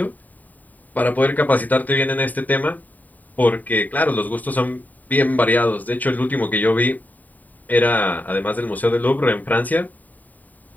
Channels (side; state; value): right; late; 0.082 ms